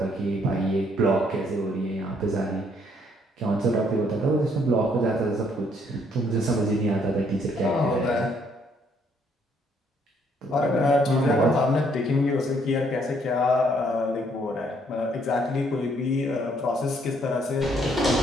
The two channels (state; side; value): normal; both; correlation 0.67